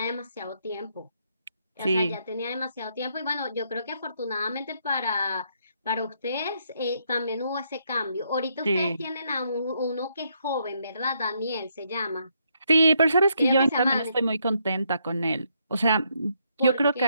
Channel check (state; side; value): inverted; both; correlation -0.75